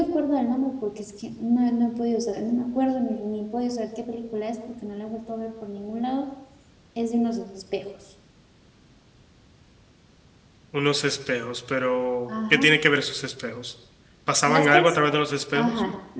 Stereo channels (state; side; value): identical; both; correlation 1.00